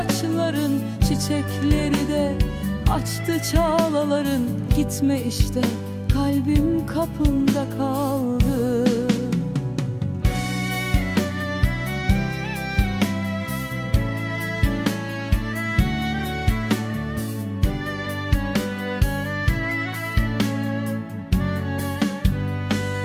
Çiçekleri de açtı çağlaların. Gitme işte, kalbim kapında kaldı.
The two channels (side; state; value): both; identical; correlation 1.00